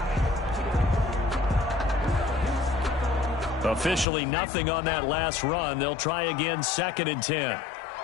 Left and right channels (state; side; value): drops out; right; at 4.0 s